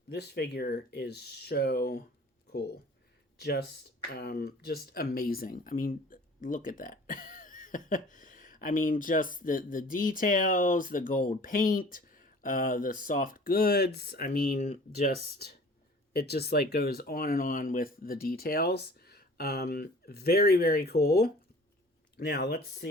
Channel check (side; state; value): both; normal; correlation 0.47